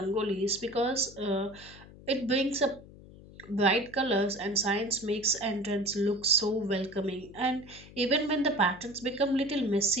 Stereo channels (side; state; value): left; noise; hum, 19 dB below the sound